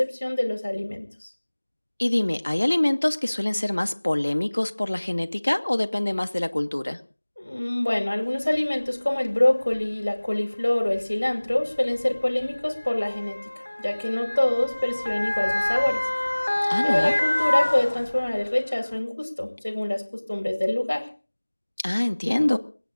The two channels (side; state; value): both; inverted; correlation -1.00